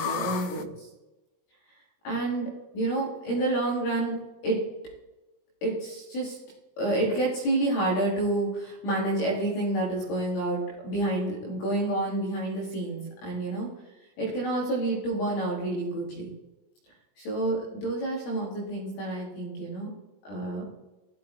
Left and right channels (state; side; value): late; right; 20 ms